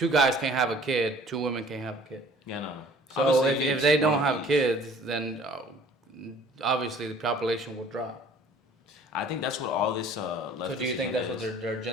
guys can't have a kid, two women can't have a kid. Yeah, no. So Obviously, if they don't have kids, then obviously the population will drop. I think that's what all this. So do you think that's what their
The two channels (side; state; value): both; normal; correlation 0.52